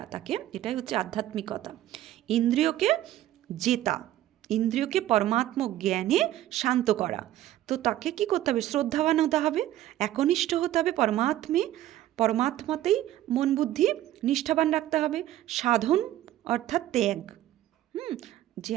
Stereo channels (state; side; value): quieter; left; 13.7 dB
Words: তাকে, এটাই হচ্ছে আধ্যাত্মিকতা। ইন্দ্রিয়কে জেতা, ইন্দ্রিয়কে পরমাত্ম জ্ঞানে শান্ত করা। তো তাকে কি করতে হবে, শ্রদ্ধাবান হতে হবে, একনিষ্ঠ হতে হবে পরমাত্মাতেই মন বুদ্ধি নিষ্ঠাবান রাখতে হবে। সাধন অর্থাৎ ত্যাগ, যে